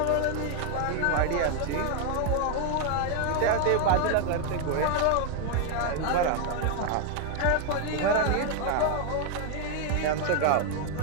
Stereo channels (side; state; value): both; different; correlation 0.00